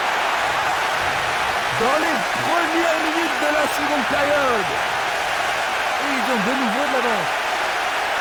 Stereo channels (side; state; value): both; identical; correlation 1.00